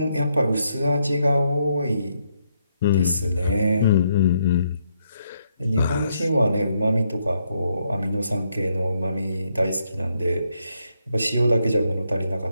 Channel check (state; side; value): inverted; both; correlation -0.77